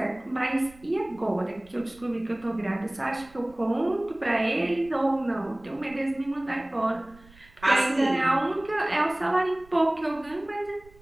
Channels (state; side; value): noise; right; rumble, 25 dB below the sound